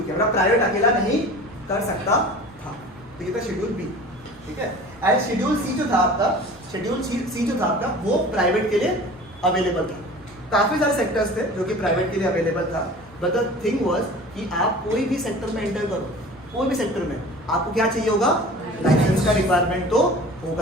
किया, मतलब प्राइवेट अकेला नहीं कर सकता था। तो ये था शेड्यूल बी, ठीक है। एंड शेड्यूल सी जो था आपका, शेड्यूल सी जो था आपका वो प्राइवेट के लिए अवेलेबल था, काफी सारे सेक्टर्स थे जो कि प्राइवेट के लिए अवेलेबल था, बट द थिंग वाज कि आप कोई भी सेक्टर में एंटर करो, कोई भी सेक्टर में आपको क्या चाहिए होगा, लाइसेंस का रिक्वायरमेंट तो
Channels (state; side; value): normal; both; correlation 0.41